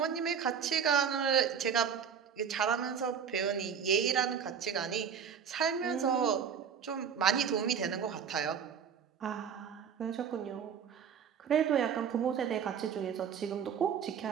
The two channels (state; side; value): quieter; left; 7.3 dB